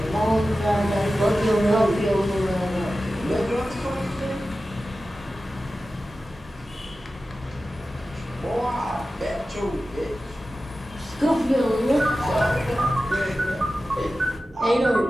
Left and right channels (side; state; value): both; normal; correlation 0.94